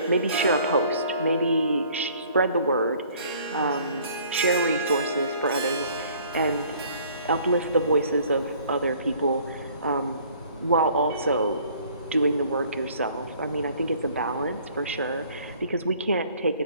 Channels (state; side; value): inverted; both; correlation -0.56